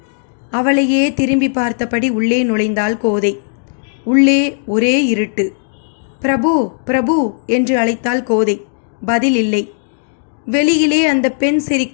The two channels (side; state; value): right; silent; digital silence